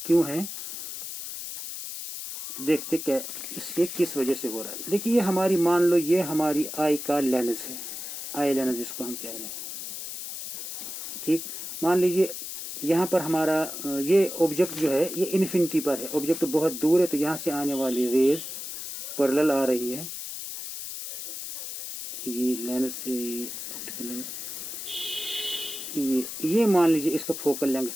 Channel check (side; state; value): left; noise; hiss, 8 dB below the sound